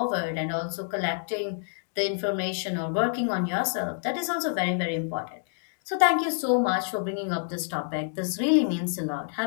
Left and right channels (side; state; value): right; silent; 60 dB below the other